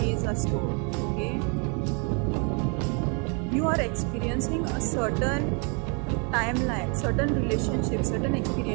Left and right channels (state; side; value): quieter; left; 35.7 dB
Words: are stored. Okay, you are experiencing a certain timeline, certain relationships, certain